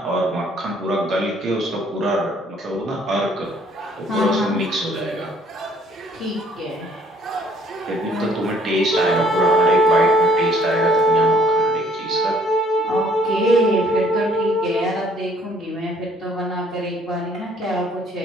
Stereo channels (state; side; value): normal; both; correlation 0.61